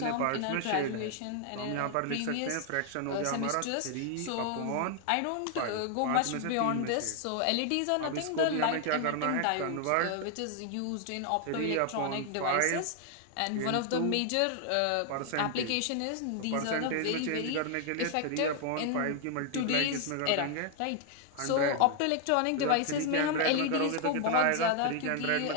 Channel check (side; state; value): both; different; correlation 0.00